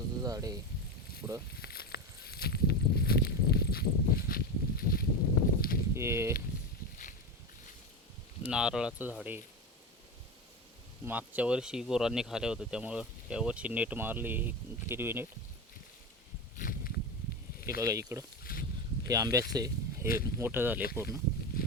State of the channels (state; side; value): normal; both; correlation 0.20